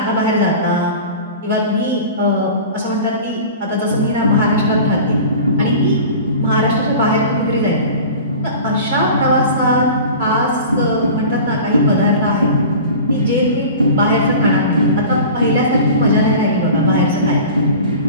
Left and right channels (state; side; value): inverted; both; correlation -0.38